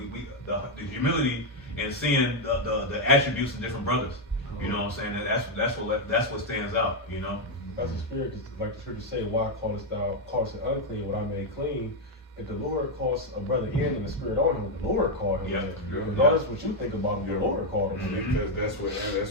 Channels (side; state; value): both; normal; correlation 0.02